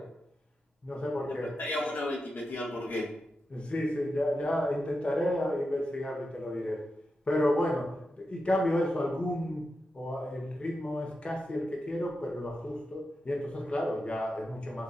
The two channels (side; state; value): both; normal; correlation 0.89